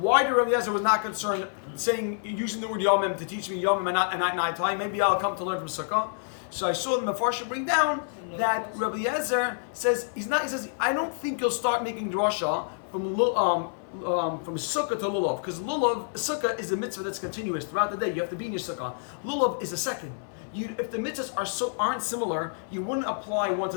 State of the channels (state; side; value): silent; right; digital silence